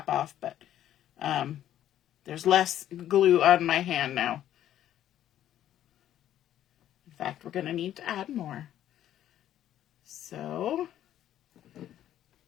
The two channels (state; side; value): quieter; right; 11.7 dB